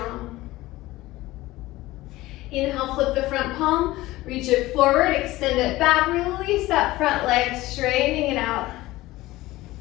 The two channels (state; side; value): quieter; right; 18.0 dB